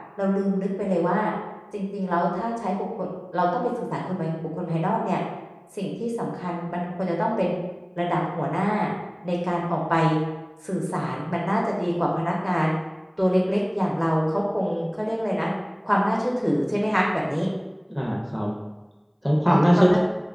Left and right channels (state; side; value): identical; both; correlation 1.00